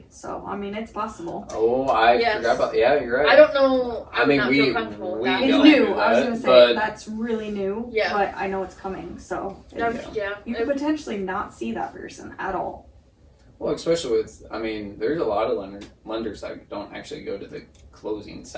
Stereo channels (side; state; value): both; identical; correlation 1.00